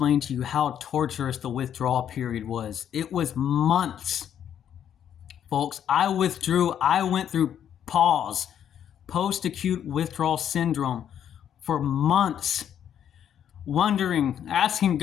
to you how torturous the withdrawal period was. It was months. Folks, I went through PAWS, post-acute withdrawal syndrome, for months, wondering, asking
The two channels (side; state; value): right; quieter; 9.5 dB